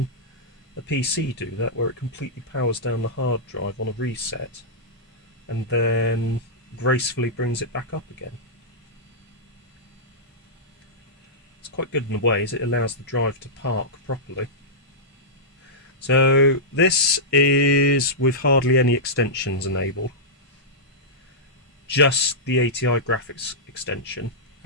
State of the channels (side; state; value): both; normal; correlation -0.12